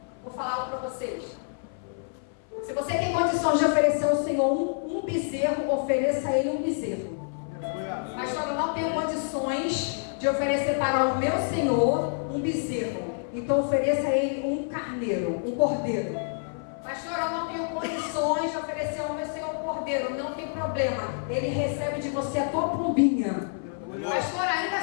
Vou falar algo para vocês. Se você tem condições de oferecer ao Senhor um bezerro, ofereça a Ele um bezerro. Pastor, eu não tenho condições de oferecer para o meu Senhor um bezerro. Então ofereça a Ele um carneiro, um cordeiro. Pastor, eu não tenho condições de oferecer ao meu Senhor um cordeiro. Não tem problema. Ele recebe de você a tua pombinha. Pastor, ainda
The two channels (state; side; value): silent; right; 57 dB below the other